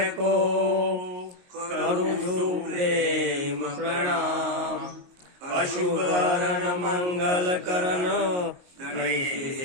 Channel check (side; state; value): left; late; 22 ms